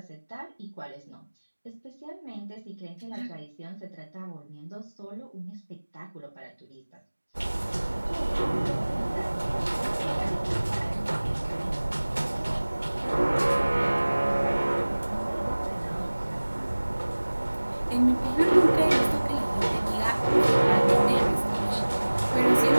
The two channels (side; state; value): both; inverted; correlation -1.00